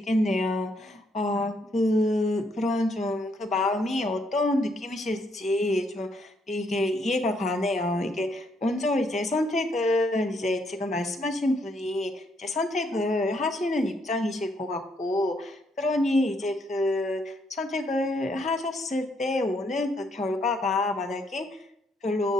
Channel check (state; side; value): normal; both; correlation 0.72